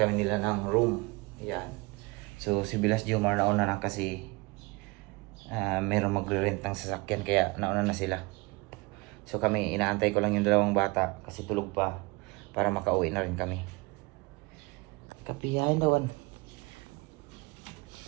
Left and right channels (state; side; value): quieter; left; 25.8 dB